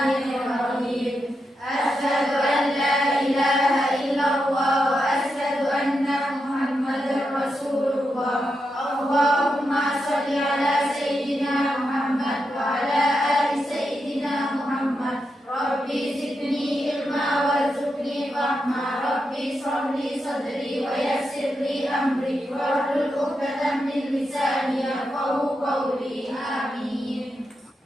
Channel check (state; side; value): normal; both; correlation 0.86